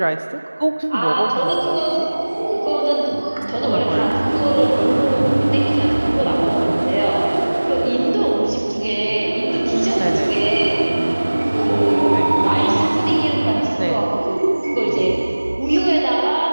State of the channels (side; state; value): both; inverted; correlation -1.00